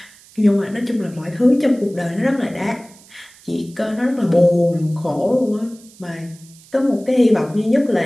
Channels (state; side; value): noise; right; hiss, 25 dB below the sound